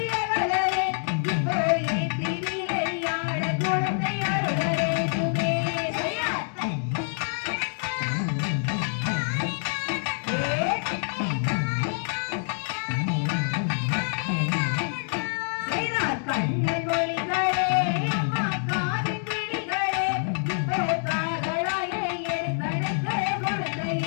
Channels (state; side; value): silent; right; 61 dB below the other